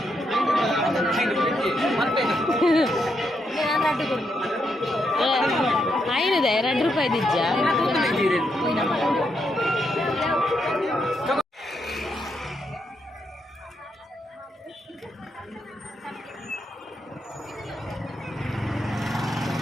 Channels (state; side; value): normal; both; correlation 0.80